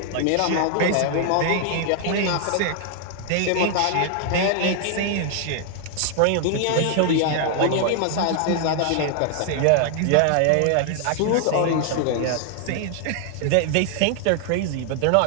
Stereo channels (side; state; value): both; different; correlation 0.00